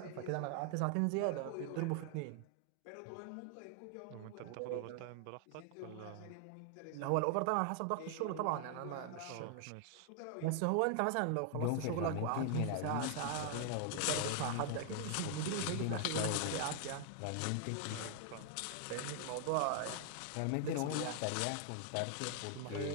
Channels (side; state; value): both; different; correlation 0.00